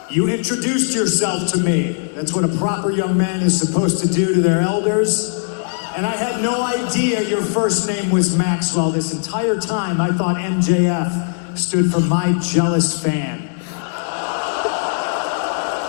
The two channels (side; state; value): right; silent; digital silence